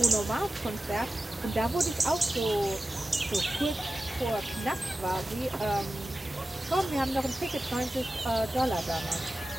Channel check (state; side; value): normal; both; correlation 0.94